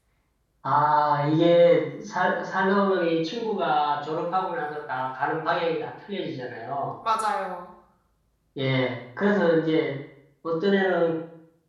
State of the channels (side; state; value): both; identical; correlation 1.00